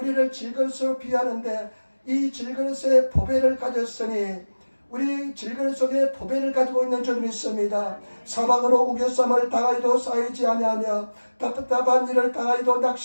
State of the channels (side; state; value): both; inverted; correlation -1.00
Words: 질그릇으로 비하는데 이 질그릇에 보배를 가졌으니 우리 질그릇 속에 보배를 가지고 있는 줄 믿습니다. 사방으로 우겨쌈을 당하여도 쌓이지 아니하며 답답한 일을 당하여도